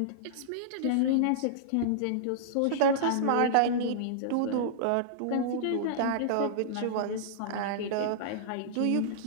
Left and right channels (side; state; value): both; different; correlation -0.02